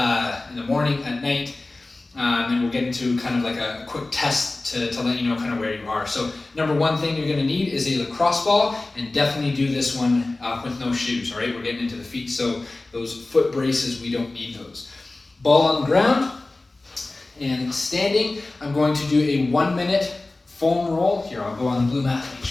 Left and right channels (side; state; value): right; quieter; 3.1 dB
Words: in the morning, at night, and we'll get into kind of like a quick test to let you know kind of where you are. So number one thing you're going to need is a lacrosse ball, and definitely do this one with no shoes, all right? We're getting into the feet, so those foot braces, we don't need those. Ball on the ground, and standing, I'm going to do a 1-minute foam roll. Here, I'll go on the blue mat, make